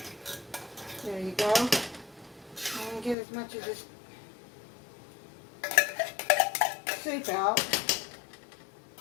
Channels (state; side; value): drops out; right; at 3.2 s